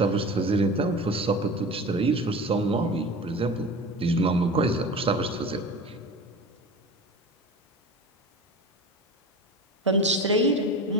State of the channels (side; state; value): both; normal; correlation 0.33